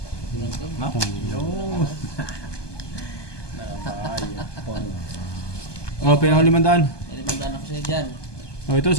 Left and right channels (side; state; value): right; late; 1.2 ms